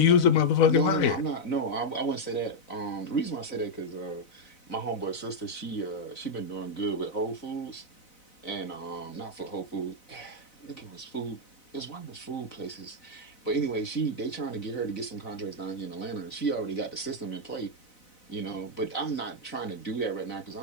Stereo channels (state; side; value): late; right; 4.0 ms